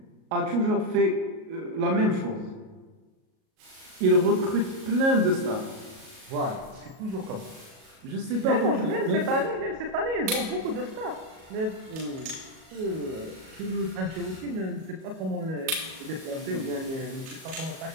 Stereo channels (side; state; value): left; late; 37 ms